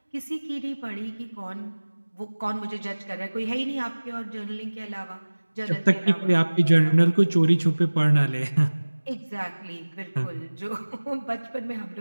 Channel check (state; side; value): inverted; both; correlation -1.00